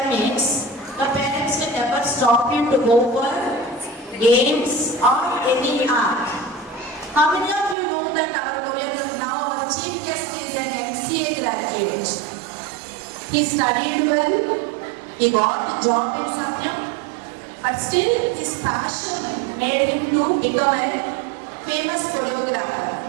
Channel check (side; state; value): left; drops out; at 7.8 s